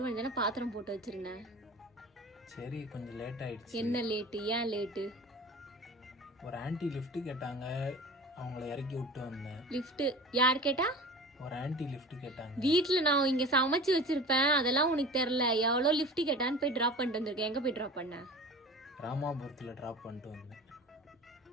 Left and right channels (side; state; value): both; normal; correlation 0.38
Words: தானே பாத்திரம் போட்டு வச்சிருந்தேன். சரி, கொஞ்சம் லேட் ஆயிடுச்சு. என்ன லேட்டு? ஏன் லேட்டு? ஒரு ஆன்ட்டி லிஃப்ட் கேட்டாங்க, அவங்கள இறக்கி விட்டு வந்தேன். லிஃப்ட் யார் கேட்டா? ஒரு ஆன்ட்டி லிஃப்ட் கேட்டாங்க. வீட்டுல நான் இங்க சமைச்சு வச்சிருப்பேன், அதெல்லாம் உனக்கு தெரியல. எவ்வளோ லிஃப்ட் கேட்டான்னு போய் டிராப் பண்ணிட்டு வந்திருக்கேன். எங்க போய் டிராப் பண்ண? ராமாபுரத்தில் ட்ராப் பண்ணிட்டு வந்தேன்.